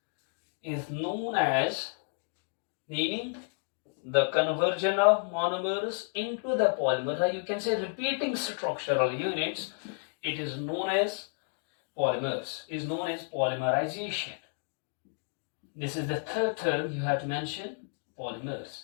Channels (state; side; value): silent; right; 57 dB below the other